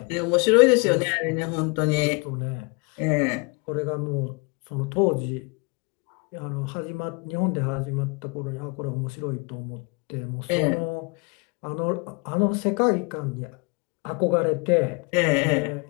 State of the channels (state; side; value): quieter; right; 30.6 dB